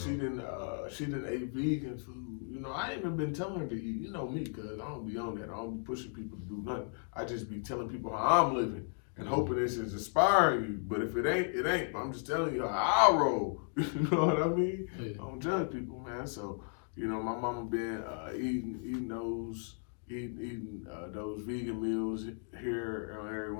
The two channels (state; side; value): silent; right; 54 dB below the other